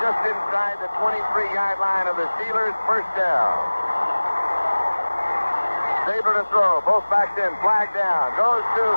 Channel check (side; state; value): both; inverted; correlation -1.00